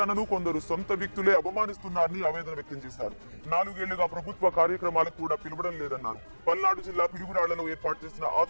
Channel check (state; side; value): inverted; both; correlation -1.00